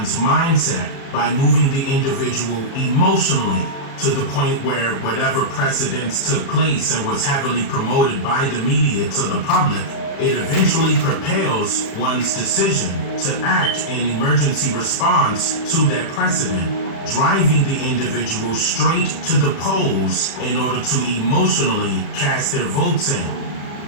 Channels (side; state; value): right; late; 36 ms